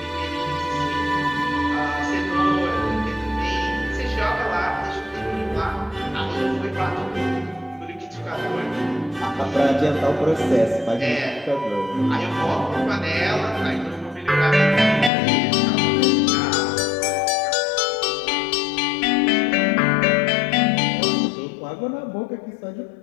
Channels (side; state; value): right; drops out; at 15.1 s